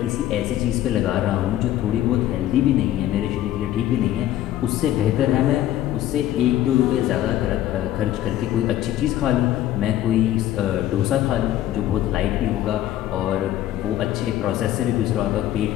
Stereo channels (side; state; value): right; quieter; 12.9 dB